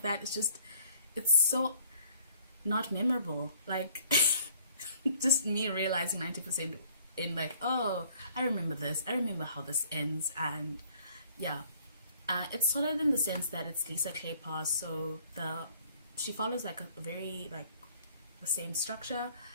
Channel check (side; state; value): both; inverted; correlation -0.60